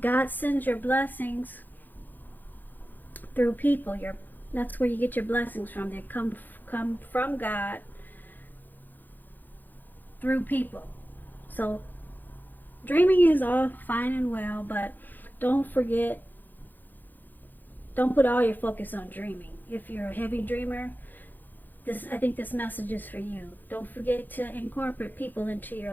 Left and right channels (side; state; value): right; late; 0.087 ms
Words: God sends your blessings through people. That's where you get your blessings from. They come from God through people. So dreaming is all fine and well, but don't put all your focus on dreaming. If you're a heavy dreamer, I think this message is for you. Don't forget to incorporate people into your